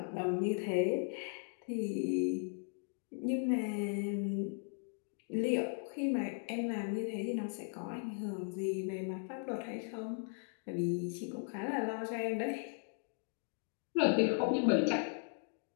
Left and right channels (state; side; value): silent; right; 53 dB below the other